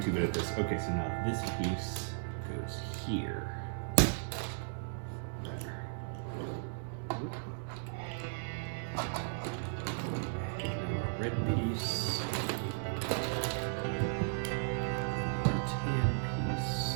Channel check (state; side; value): silent; left; digital silence